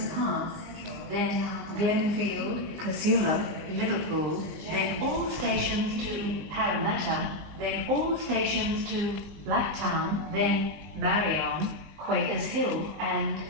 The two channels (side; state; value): left; late; 20 ms